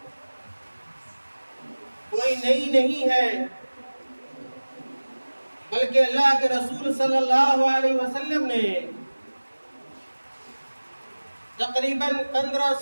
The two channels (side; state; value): both; inverted; correlation -1.00